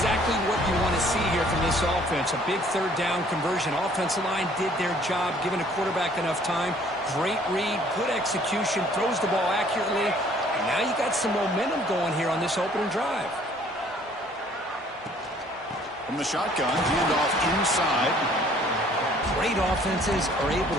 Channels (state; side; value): normal; both; correlation 0.58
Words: what you want to see here from this offense. A big third down conversion. Offensive line did their job, giving a quarterback enough time. Great read, good execution, throws the ball accurately. And now you got some momentum going here on this opening drive. From the shotgun, handoff inside. Great offenses are able